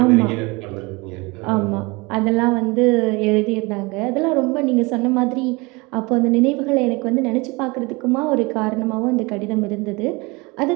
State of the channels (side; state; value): left; quieter; 25.7 dB